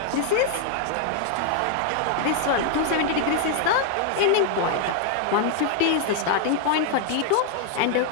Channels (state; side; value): different; both; correlation 0.00